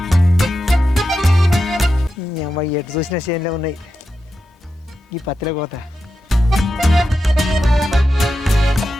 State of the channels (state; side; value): normal; both; correlation 0.89